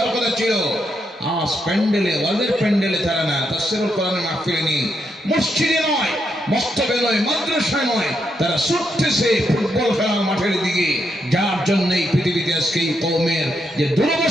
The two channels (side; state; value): both; normal; correlation 0.80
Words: কথা ছিল, আজ প্যান্ডেলে, ওয়াজের প্যান্ডেলে তারা না, তাফসীরুল কোরআনের মাহফিলে নেই, মসজিদে নয়, মস্তবে নয়, মাদ্রাসায় নয়, তারা ছুটতেছে ফুটবল খেলার মাঠের দিকে। যার জন্য এই পৃথিবীতে আজকে এই কওমের যে